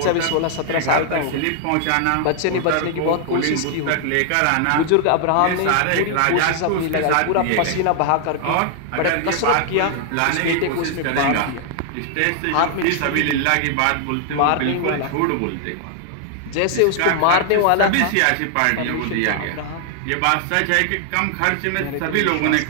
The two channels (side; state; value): both; different; correlation 0.00